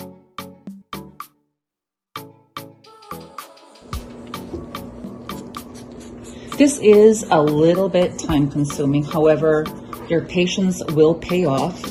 This is a little bit time consuming. However, your patience will pay off.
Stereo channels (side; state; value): both; identical; correlation 1.00